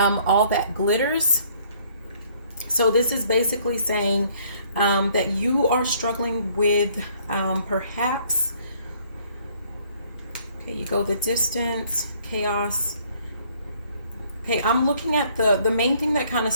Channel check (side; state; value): both; inverted; correlation -0.62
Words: that glitters. So this is basically saying that you are struggling with perhaps, okay, you go the distance, chaos. Okay, I'm looking at the main thing that kind of